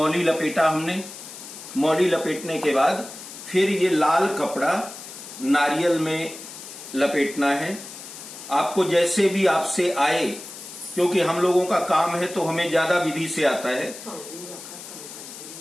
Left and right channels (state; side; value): noise; left; hiss, 13 dB below the sound